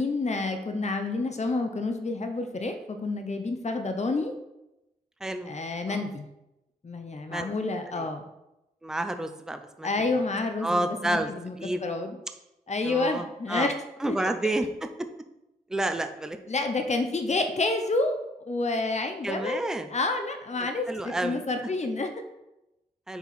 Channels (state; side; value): normal; both; correlation 0.64